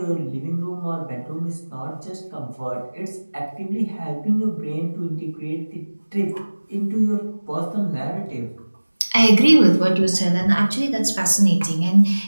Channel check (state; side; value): inverted; both; correlation -1.00